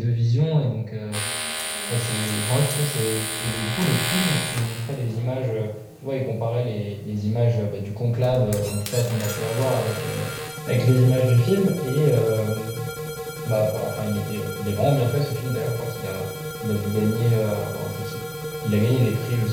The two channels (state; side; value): identical; both; correlation 1.00